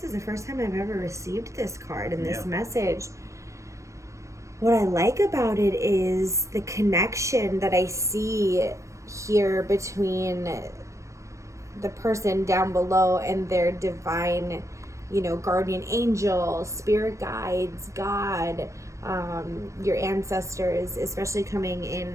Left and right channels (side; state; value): left; late; 0.15 ms